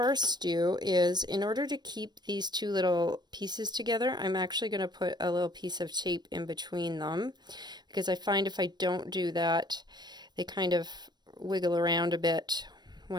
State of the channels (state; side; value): late; left; 0.21 ms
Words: do is, in order to keep these two little pieces together, I'm actually going to put a little piece of tape in between them, because I find if I don't do that, they kind of wiggle around a bit